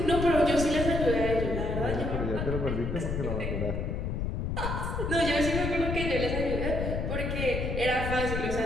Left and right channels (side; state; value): left; noise; rumble, 2 dB below the sound